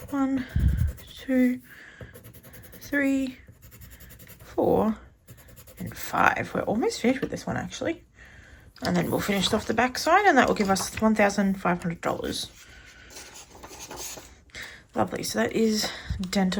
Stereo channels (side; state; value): both; identical; correlation 1.00